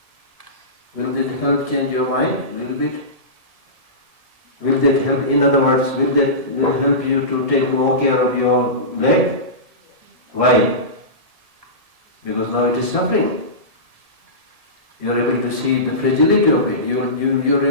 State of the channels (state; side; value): late; left; 1.8 ms